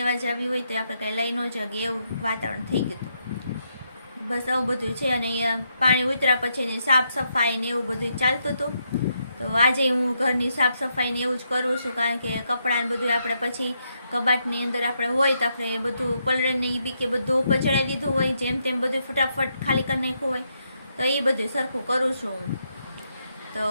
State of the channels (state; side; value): inverted; both; correlation -0.79